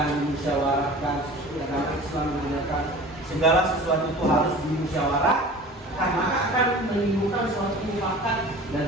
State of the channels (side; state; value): both; normal; correlation 0.41